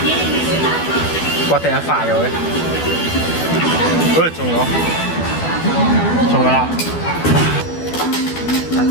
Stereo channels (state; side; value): late; right; 12 ms